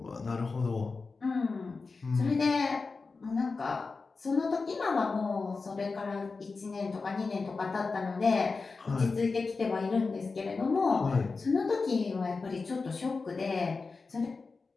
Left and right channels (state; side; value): quieter; right; 4.2 dB